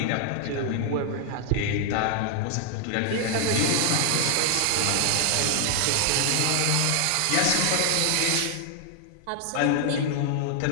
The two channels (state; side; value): different; both; correlation 0.00